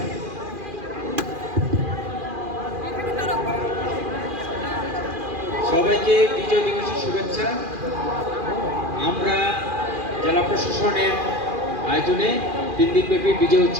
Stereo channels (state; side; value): late; left; 2.4 ms